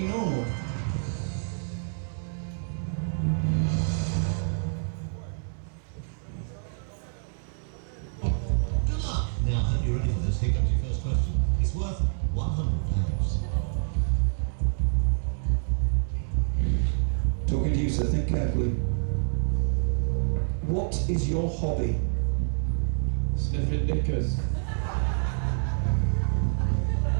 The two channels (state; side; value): silent; left; digital silence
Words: normal. Good luck. Now, I hope you're ready for this. Here comes your first question. It's worth £100. Talking to you, sir, think carefully. What is your hobby? Sniffing knickers.